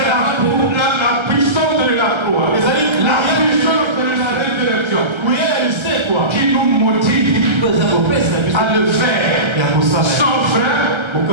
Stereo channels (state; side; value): late; left; 1.3 ms